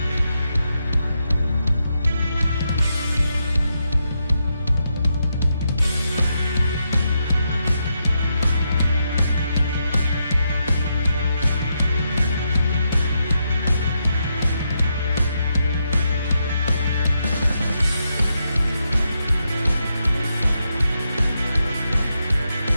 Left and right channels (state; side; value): inverted; both; correlation -0.82